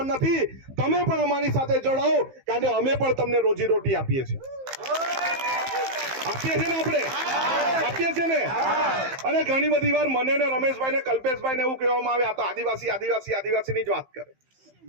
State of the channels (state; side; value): late; left; 15 ms